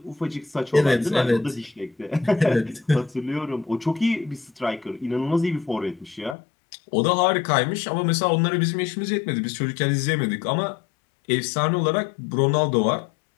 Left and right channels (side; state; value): right; drops out; at 6.4 s